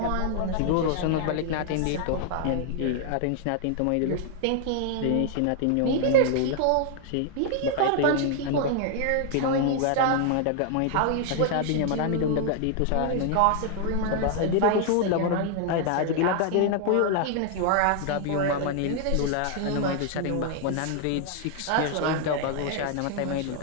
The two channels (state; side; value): different; both; correlation 0.00